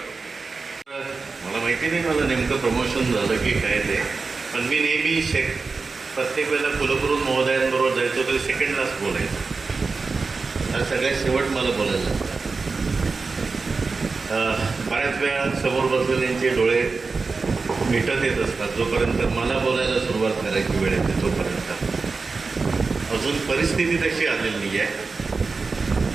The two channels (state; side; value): quieter; left; 4.3 dB